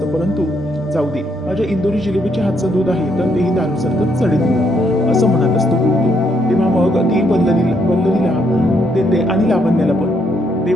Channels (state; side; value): normal; both; correlation 0.74